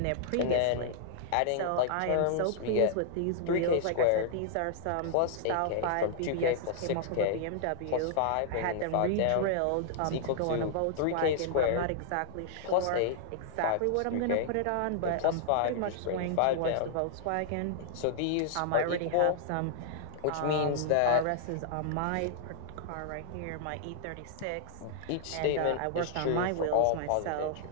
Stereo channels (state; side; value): different; both; correlation -0.01